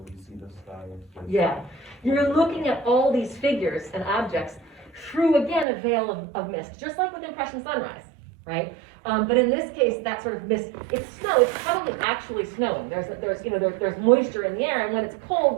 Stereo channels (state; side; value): drops out; left; at 5.7 s